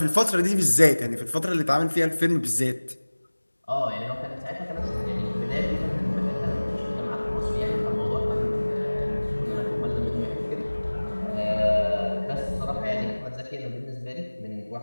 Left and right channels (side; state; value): both; inverted; correlation -1.00